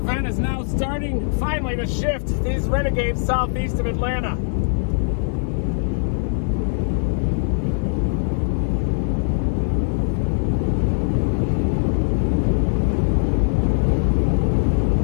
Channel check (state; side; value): silent; right; digital silence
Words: is now starting finally to shift these renegades southeast of Atlanta.